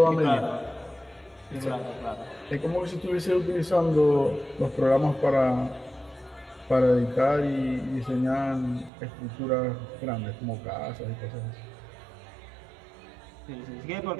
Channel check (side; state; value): left; drops out; at 8.9 s